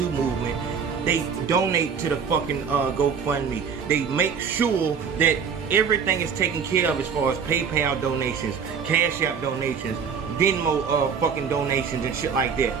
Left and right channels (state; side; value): quieter; left; 6.5 dB